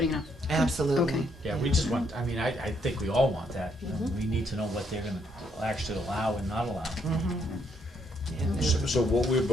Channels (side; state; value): both; normal; correlation 0.73